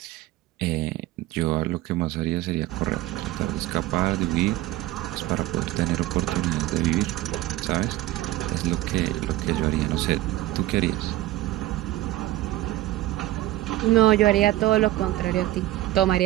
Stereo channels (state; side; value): quieter; left; 16.2 dB